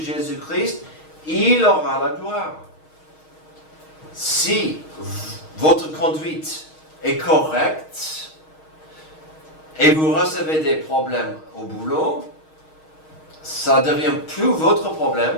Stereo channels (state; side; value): late; right; 6.4 ms